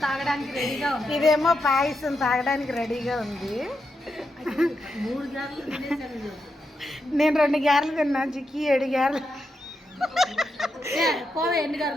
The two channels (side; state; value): both; normal; correlation 0.85